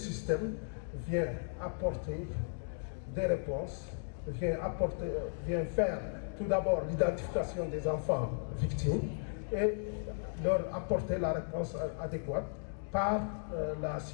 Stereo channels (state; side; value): silent; right; digital silence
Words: vient apporter des réponses, vient faire tout d'abord l'identification des enfants victimes et leur apporter la réponse adéquate par la